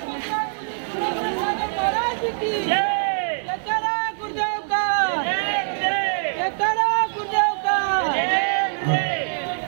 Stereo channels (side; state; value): left; silent; 56 dB below the other